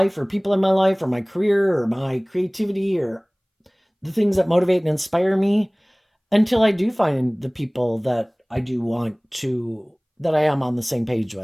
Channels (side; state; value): both; identical; correlation 1.00